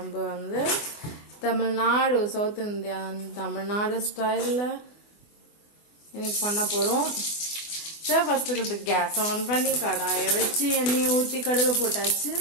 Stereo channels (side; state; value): right; late; 24 ms